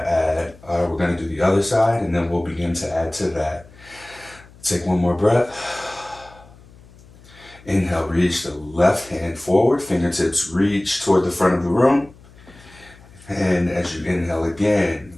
do the other side, and then we'll begin to add to that. Take one more breath. Inhale, reach the left hand forward, fingertips reach toward the front of the room. And as you inhale again,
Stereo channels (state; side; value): noise; left; hum, 24 dB below the sound